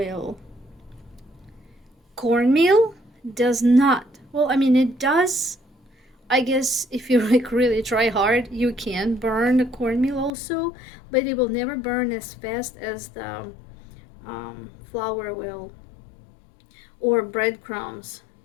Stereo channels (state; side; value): drops out; right; at 10.3 s